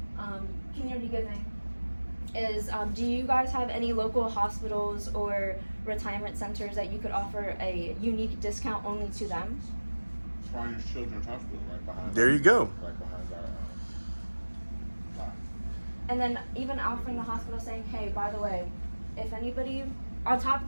Community giving is, do you guys have any local hospitals or retirement centers that you could offer a unique discount only to them? Triangle Children's Hospital right behind. There you go. Right behind our lot. And then even offering the hospital saying, hey, by the way, if anybody, on top of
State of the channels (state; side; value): inverted; both; correlation -1.00